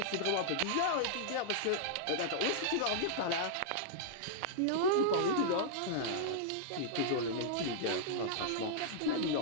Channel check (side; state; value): both; different; correlation -0.02